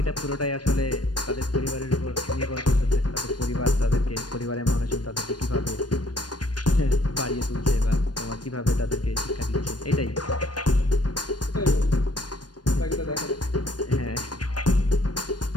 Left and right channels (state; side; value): late; right; 0.69 ms